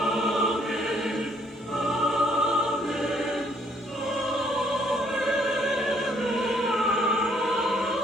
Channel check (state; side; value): normal; both; correlation 0.66